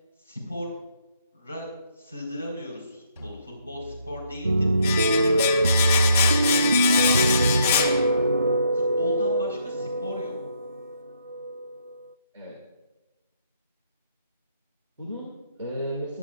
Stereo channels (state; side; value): inverted; both; correlation -0.71